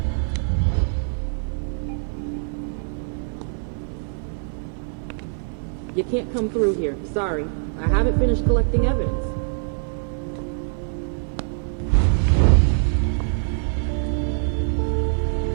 You can't come through here. Sorry. I haven't finished collecting evidence.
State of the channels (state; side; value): silent; left; 63 dB below the other